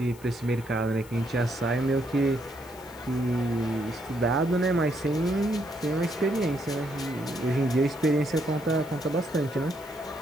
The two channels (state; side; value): noise; left; hiss, 22 dB below the sound